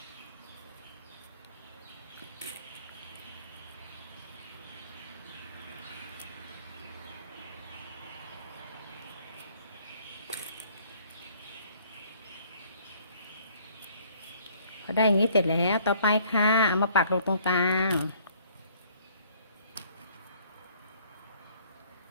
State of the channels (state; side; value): inverted; both; correlation -0.60